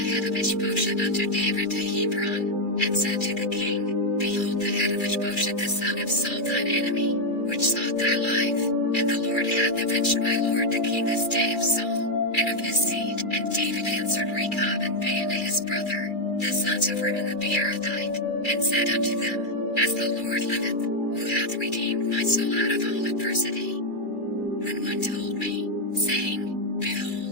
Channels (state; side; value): late; right; 2.3 ms